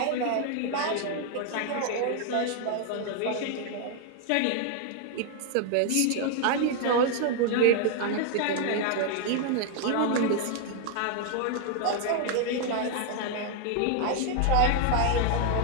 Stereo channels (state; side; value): different; both; correlation 0.00